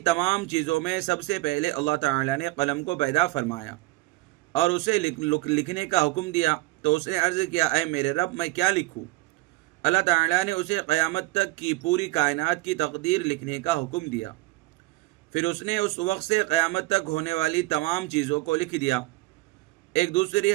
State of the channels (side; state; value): left; quieter; 20.2 dB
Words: چیزوں میں سب سے پہلے اللہ تعالیٰ نے قلم کو پیدا فرمایا اور اسے لکھنے کا حکم دیا، تو اس نے عرض کیا، اے میرے رب، میں کیا لکھوں؟ اللہ تعالیٰ نے اسے قیامت تک کی پوری کائنات کی تقدیر لکھنے کا حکم دیا۔ پھر اس نے اس وقت سے قیامت تک ہونے والی تمام چیزوں کو لکھ دیا۔ ایک دوسری